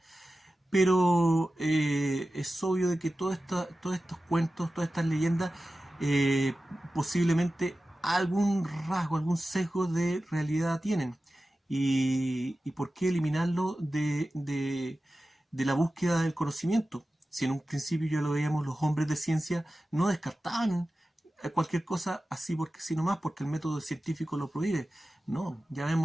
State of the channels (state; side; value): normal; both; correlation 0.94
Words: pero es obvio de que todos estos cuentos, todas estas leyendas, posiblemente algún rasgo, algún sesgo de realidad tienen. ¿Y por qué eliminarlo de la búsqueda del conocimiento? Si en un principio ya lo veíamos, los hombres de ciencia no descartaban cualquier cosa así porque sí nomás, porque el método científico lo prohíbe. No, ya